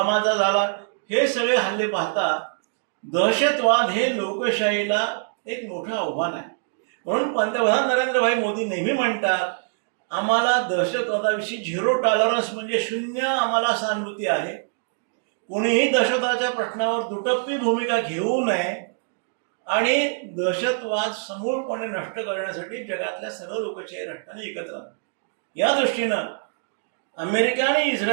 झाला. हे सगळे हल्ले पाहता दहशतवाद हे लोकशाहीला एक मोठं आव्हान आहे. म्हणून पंतप्रधान नरेंद्रभाई मोदी नेहमी म्हणतात आम्हाला दहशतवादाविषयी 0 टॉलरन्स म्हणजे शून्य आम्हाला सहानुभूती आहे. कोणीही दहशतवादाच्या प्रश्नावर दुटप्पी भूमिका घेऊ नये आणि दहशतवाद समूळपणे नष्ट करण्यासाठी जगातल्या सर्व लोकशाही राष्ट्रांनी एकत्र आले. या दृष्टीनं अमेरिका आणि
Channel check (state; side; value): silent; left; digital silence